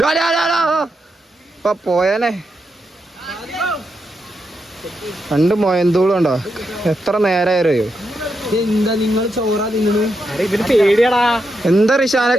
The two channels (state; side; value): normal; both; correlation 0.84